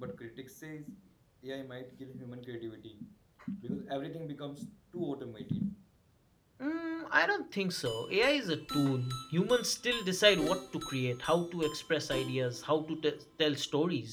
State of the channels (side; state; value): both; identical; correlation 1.00